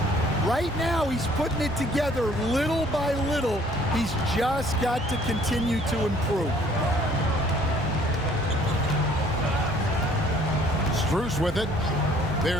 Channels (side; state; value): both; normal; correlation 0.58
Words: Right now, he's putting it together little by little. He's just got to continue to improve. Strus with it.